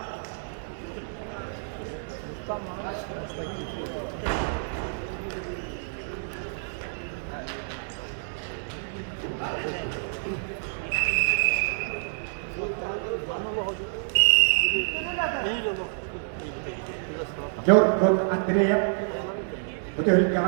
Yorkun Andreyev, betul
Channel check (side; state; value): left; silent; digital silence